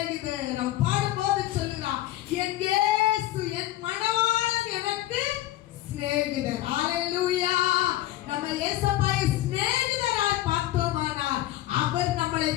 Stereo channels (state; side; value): quieter; right; 14.8 dB